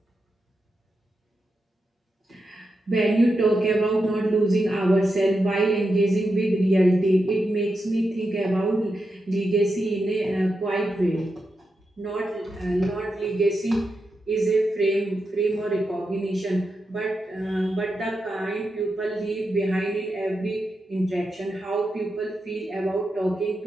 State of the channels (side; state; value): both; normal; correlation 0.87